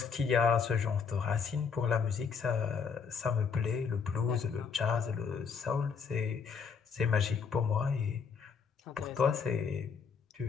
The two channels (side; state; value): right; quieter; 6.0 dB